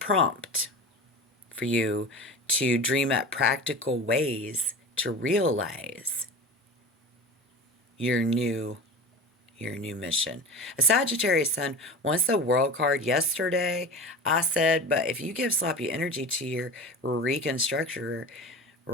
for you to dream up practical ways to realize your new mission. A Sagittarius Sun wants the World card yesterday. I said, but if you give sloppy energy to your reconstructor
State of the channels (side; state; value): both; normal; correlation 0.32